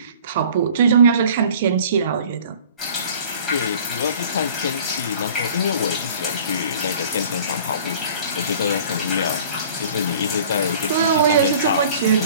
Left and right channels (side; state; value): both; inverted; correlation -0.48